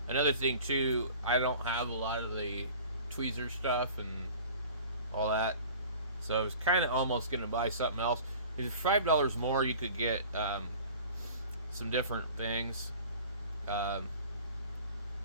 another thing too, I don't have a lot of the tweezer stuff and all that, so I was kind of almost gonna buy something else. If $5 more, you could get some different things.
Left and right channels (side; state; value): both; inverted; correlation -0.44